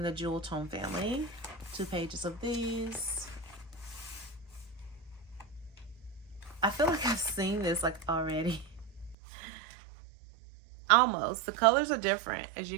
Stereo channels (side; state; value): left; drops out; at 9.2 s